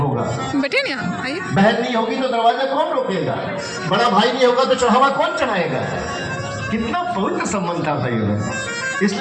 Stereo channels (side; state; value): both; identical; correlation 1.00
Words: बैठे नहीं, आइए। बहन नहीं होगी तो दरवाजा कौन रोकेगा। बड़ा भाई नहीं होगा तो चढ़ावा कौन चढ़ाएगा। कितना पवित्र संबंध था भाई,